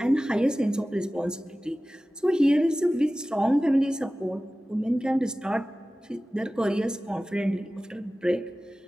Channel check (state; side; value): normal; both; correlation 0.96